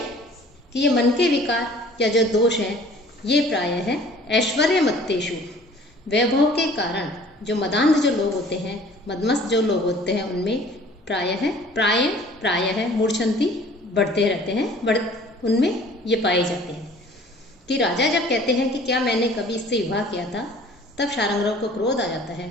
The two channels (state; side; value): normal; both; correlation 0.51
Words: कि ये मन के विकार या जो दोष हैं ये प्राय है ऐश्वर्य मत्तेषु, वैभव के कारण जो मदांध जो लोग होते हैं, मदमस्त जो लोग होते हैं, उनमें प्राय है मूर्छन्ति, बढ़ते रहते हैं, उनमें ये पाए जाते हैं। कि राजा जब कहते हैं कि क्या मैंने कभी इससे विवाह किया था, तब शार्ंगधर को क्रोध आ जाता है